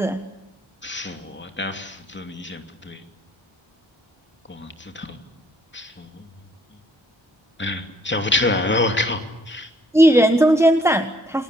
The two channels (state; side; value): normal; both; correlation 0.66